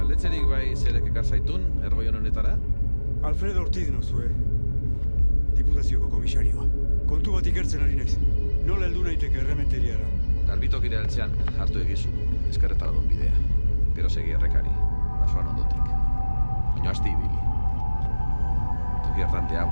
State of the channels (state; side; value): inverted; both; correlation -1.00